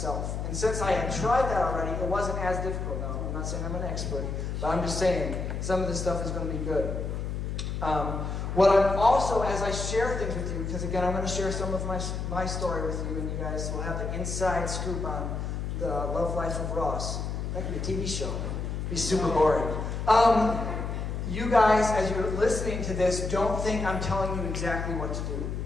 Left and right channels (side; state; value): left; noise; hum, 3 dB below the sound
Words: And since I had tried that already, it wasn't as difficult. Now, I'm not saying I'm an expert, but I'm just saying some of this stuff is going to be good. What I'm also, as I share things with you, because again, I'm going to share some of my story with you, and you guys will have the inside scoop on the Love Life of Ross. That could be a TV show. It'd be super boring. You guys, as you're listening to this, don't think I'm telling you exactly what to do.